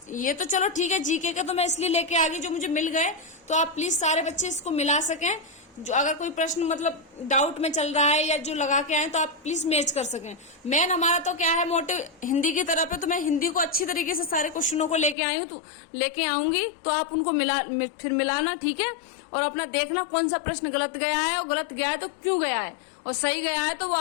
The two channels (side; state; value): right; drops out; at 15.2 s